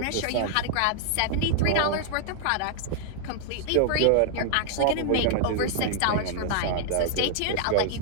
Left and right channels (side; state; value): both; different; correlation 0.00